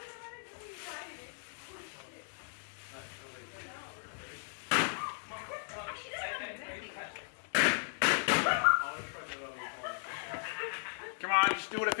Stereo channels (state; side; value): silent; right; digital silence